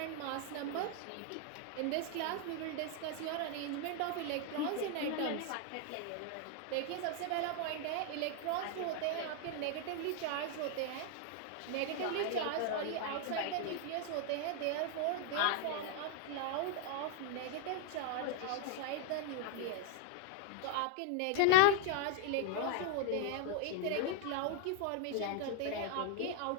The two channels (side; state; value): both; different; correlation 0.00